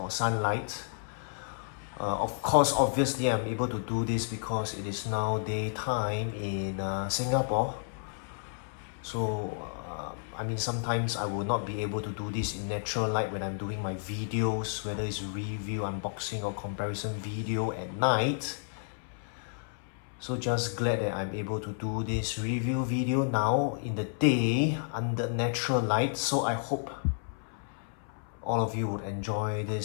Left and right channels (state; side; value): silent; right; 57 dB below the other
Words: sunlight. Of course, obviously I'm able to do this because it is now daytime in Singapore. So sometimes I will not be able to do this in natural light when I'm doing my videos, whether it's review, unboxing or comparison video at night. So just glad that I'm able to do this review video now in the day under natural light. So I hope all of you would enjoy